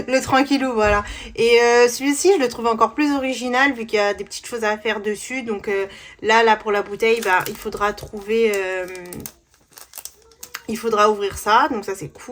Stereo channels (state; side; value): identical; both; correlation 1.00